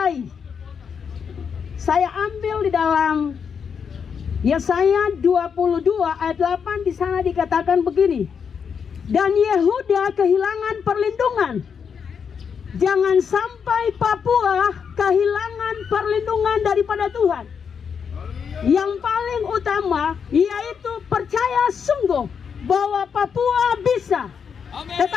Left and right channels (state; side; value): quieter; right; 6.7 dB